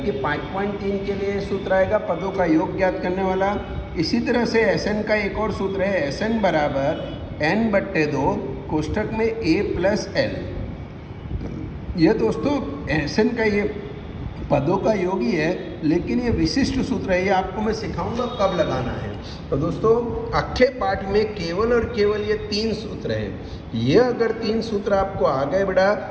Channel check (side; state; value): both; identical; correlation 1.00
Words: 5.3 के लिए सूत्र आएगा पदों का योग ज्ञात करने वाला। इसी तरह से एसएन का एक और सूत्र है, एसएन बराबर n/2 कोष्टक में a प्लस एल। ये दोस्तों एसएन का ये पदों का योग ही है, लेकिन ये विशिष्ट सूत्र है, ये आपको मैं सिखाऊंगा कब लगाना है। तो दोस्तों अक्षय पाठ में केवल और केवल ये 3 सूत्र हैं। ये अगर 3 सूत्र आपको आ गए बेटा